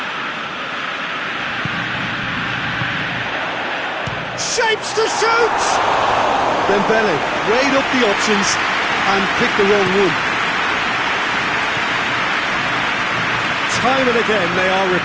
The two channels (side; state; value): both; identical; correlation 1.00